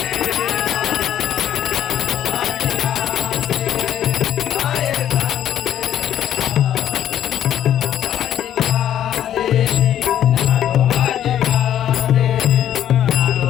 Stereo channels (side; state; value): right; quieter; 10.8 dB